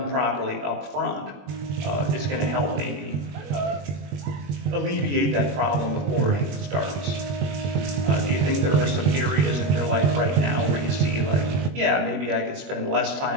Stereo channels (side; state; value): left; late; 21 ms